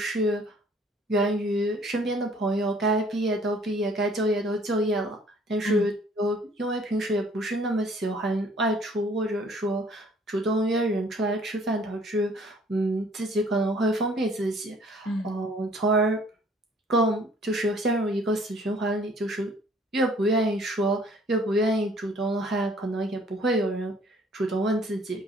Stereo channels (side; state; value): both; normal; correlation 0.57